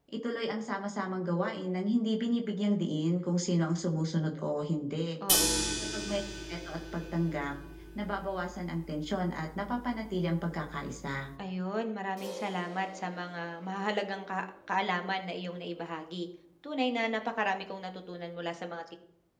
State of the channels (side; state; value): both; identical; correlation 1.00